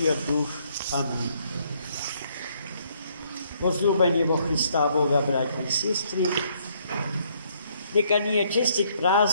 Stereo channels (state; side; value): inverted; both; correlation -0.68